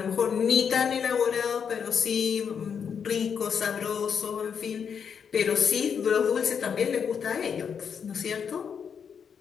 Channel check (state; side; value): quieter; right; 7.1 dB